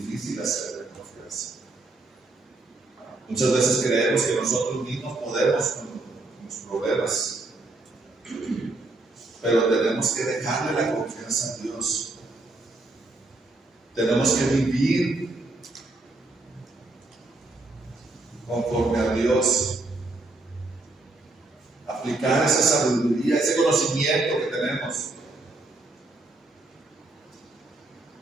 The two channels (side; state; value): left; quieter; 3.1 dB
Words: hacerlo en confianza. Muchas veces creemos que nosotros mismos podemos con los problemas, pero tenemos que dejarle la confianza a Dios. Tenemos que vivir conforme a Dios, aplicar esa sabiduría, ese conocimiento que tenemos.